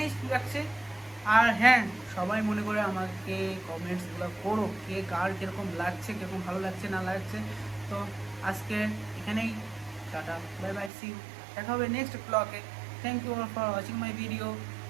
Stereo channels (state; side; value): drops out; left; at 10.9 s